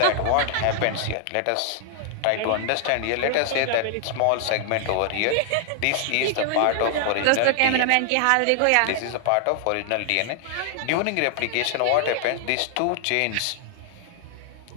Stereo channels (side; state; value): both; different; correlation 0.00